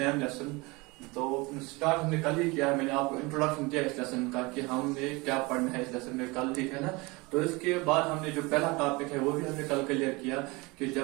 lesson. तो start हमने कल ही किया है. मैंने आपको introduction दिया इस lesson का कि हमने क्या पढ़ना है इस लेसन में कल, ठीक है ना. तो इसके बाद हमने जो पहला टॉपिक है वो भी हमने कल क्लियर किया कि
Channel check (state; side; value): quieter; left; 24.9 dB